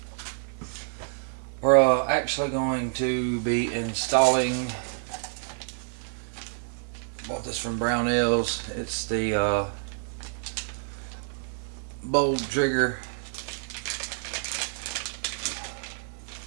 We're actually going to be installing, bought this from Brownells. It's the Bold Trigger.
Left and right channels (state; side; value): silent; left; 59 dB below the other